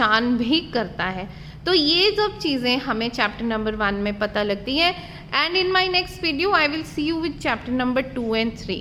भी करता है। तो ये सब चीज़ें हमें चैप्टर नंबर 1 में पता लगती है। And in my next video I will see you with chapter number 2 and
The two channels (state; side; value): identical; both; correlation 1.00